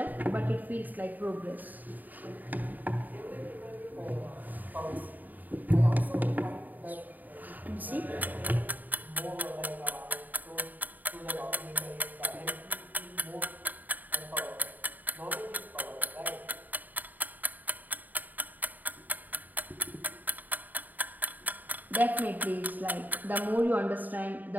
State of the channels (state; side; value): late; left; 0.085 ms